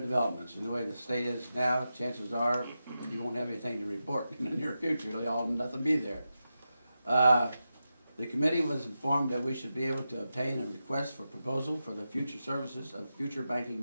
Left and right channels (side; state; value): both; inverted; correlation -0.90